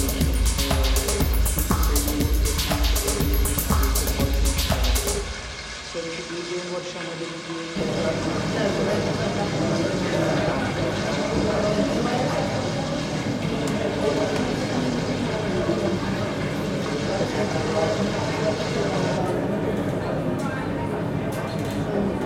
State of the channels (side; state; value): both; identical; correlation 1.00